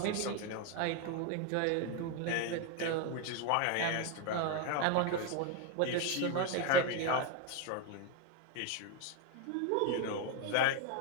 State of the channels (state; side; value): different; both; correlation 0.02